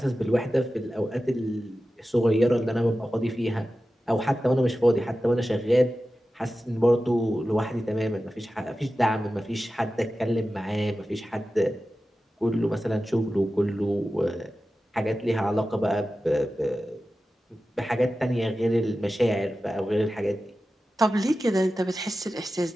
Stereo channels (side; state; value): both; normal; correlation 0.94